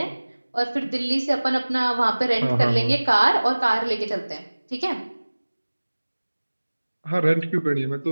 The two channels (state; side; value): inverted; both; correlation -1.00